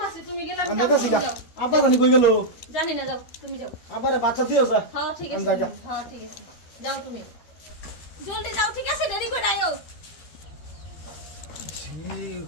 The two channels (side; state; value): right; late; 12 ms